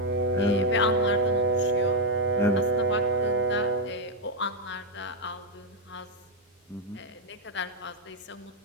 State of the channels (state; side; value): normal; both; correlation 0.01